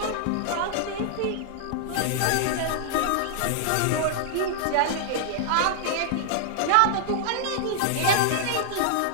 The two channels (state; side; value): different; both; correlation -0.01